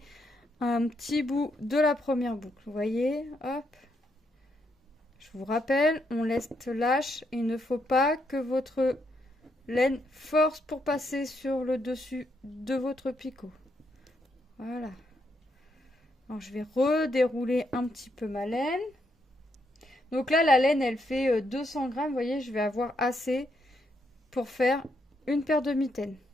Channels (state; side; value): normal; both; correlation 0.77